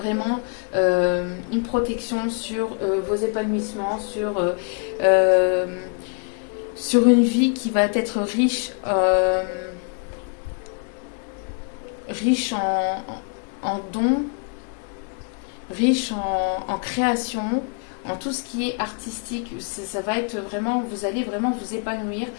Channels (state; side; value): quieter; right; 39.3 dB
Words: une protection sur vos épanouissements, sur une vie qui va être riche en dons, riche en création, en tout ce qui est artistique. Ça va être vraiment, vous allez vraiment vous épanouir